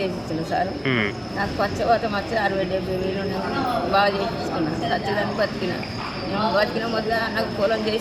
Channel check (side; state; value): both; identical; correlation 1.00